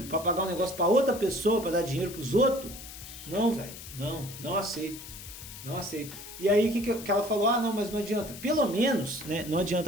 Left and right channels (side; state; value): left; noise; hiss, 13 dB below the sound